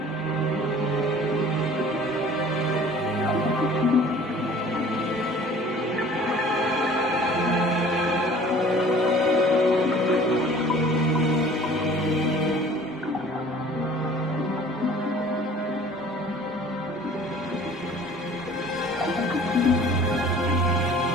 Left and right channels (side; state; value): both; normal; correlation 0.49